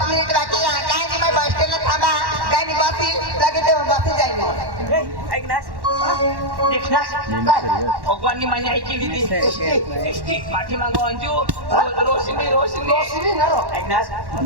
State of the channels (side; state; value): left; late; 1.1 ms